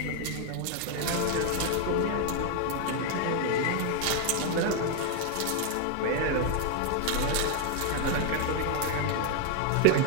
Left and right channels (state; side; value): different; both; correlation 0.01